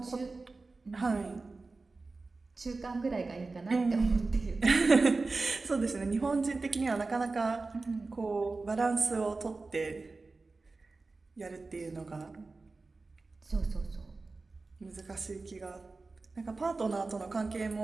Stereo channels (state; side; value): quieter; left; 3.7 dB